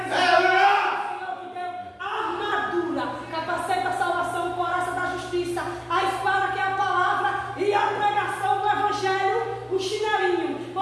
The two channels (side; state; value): both; identical; correlation 1.00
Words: armadura, capacete da salvação, coraça da justiça, a espada que é a palavra e a pregação do evangelho, o chinelinho,